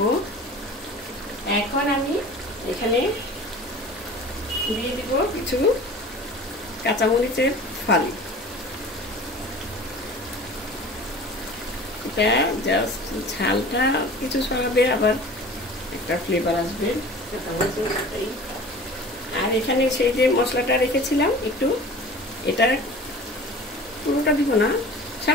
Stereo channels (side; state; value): both; normal; correlation 0.41